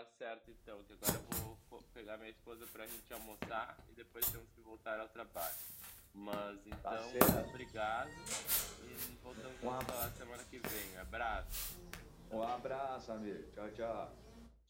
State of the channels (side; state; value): both; identical; correlation 1.00